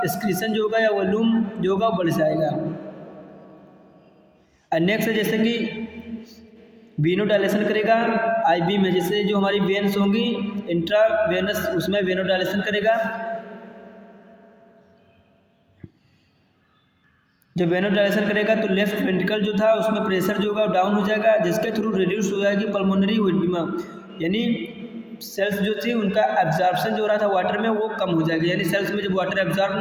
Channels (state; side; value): identical; both; correlation 1.00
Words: जो होगा या वॉल्यूम जो होगा वो बढ़ जाएगा। और नेक्स्ट है जैसे कि वेनोडाइलेशन करेगा आईबी में, जैसे जो हमारी वेन्स होंगी इंट्रावेनस उसमें वेनोडाइलेशन करेगा। जब वेनोडाइलेशन करेगा तो लेफ्ट वेंट्रिकल जो था उसमें प्रेशर जो होगा डाउन हो जाएगा, जिसके थ्रू रिड्यूस हो जाएगी पल्मोनरी एडिमा, यानी सेल्स जो थी उनका एब्जॉर्प्शन जो हो रहा था वाटर में वो कम हो जाएगा। यानी सेल्स में जब वाटर एब्जॉर्ब